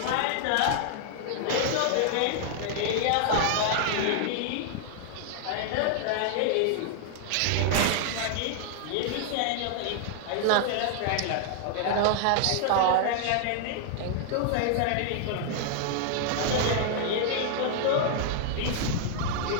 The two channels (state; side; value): different; both; correlation -0.01